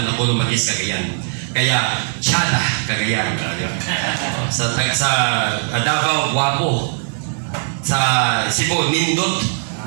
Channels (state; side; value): silent; left; digital silence